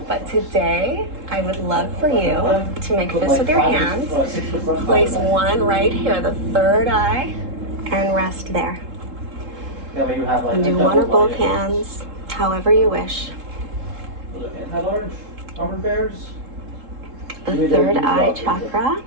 But today, I would love for you to make Put fists like with your 5 hands. 6 foot front, Place 5 back. one right here, the third eye, and rest there. That way you have like And a do double one or both line of- hands, however you wish. Was it anti-large? Armored bears? The Give me third these eye dogs, chakra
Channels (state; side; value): late; left; 3.7 ms